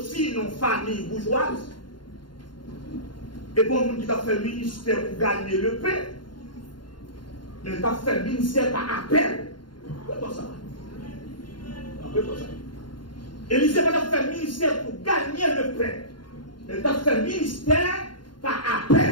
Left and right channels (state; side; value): late; right; 0.71 ms